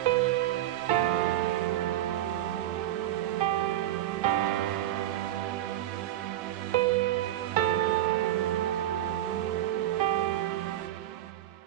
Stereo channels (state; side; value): quieter; left; 13.3 dB